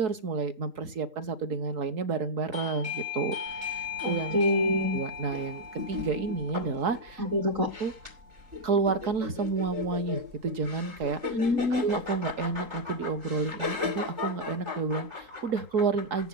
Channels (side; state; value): left; late; 3.8 ms